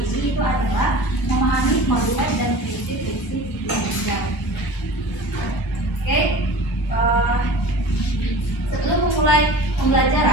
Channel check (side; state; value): both; normal; correlation 0.38